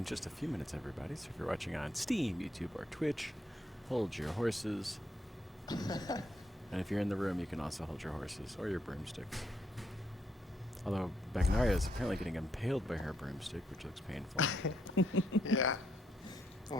just a few minutes, everybody. So if you're watching on Steam, YouTube, or Twitch, hold your horses. And if you're in the room, you can also hold your horses or your broomsticks. Although Bagnaria is apparently getting impaled by her broomstick, which looks painful. Yeah.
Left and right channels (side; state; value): both; normal; correlation 0.76